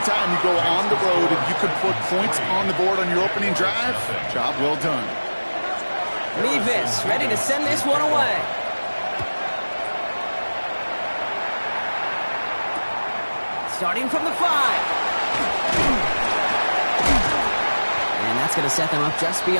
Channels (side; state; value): both; inverted; correlation -1.00